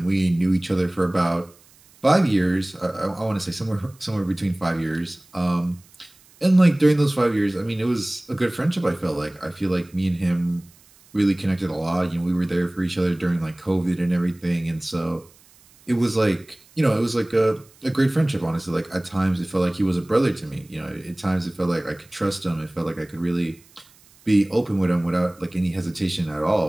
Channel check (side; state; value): right; noise; hiss, 28 dB below the sound